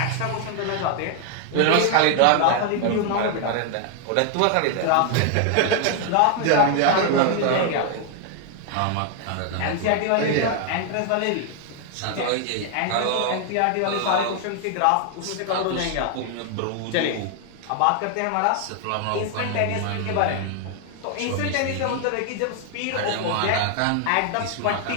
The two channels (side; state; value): both; different; correlation 0.00